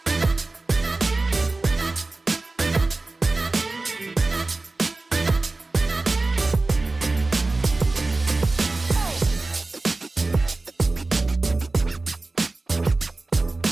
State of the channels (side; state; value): left; quieter; 3.3 dB